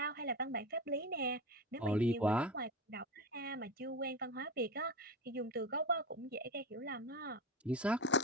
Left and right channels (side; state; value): both; normal; correlation 0.23